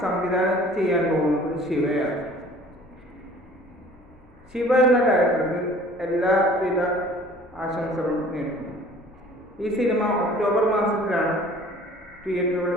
സംവിധാനം ചെയ്യാൻ പോകുന്നത് ശിവയാണ്. ശിവ എന്ന ഡയറക്ടർക്ക് എല്ലാവിധ ആശംസകളും നേരുന്നു. ഈ സിനിമ ഒക്ടോബർ മാസത്തിലാണ് തിയേറ്ററുകൾ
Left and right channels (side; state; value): both; normal; correlation 0.50